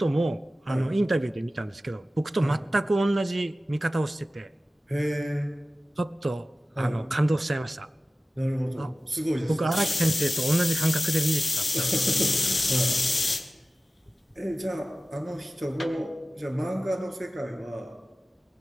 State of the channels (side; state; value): both; normal; correlation 0.96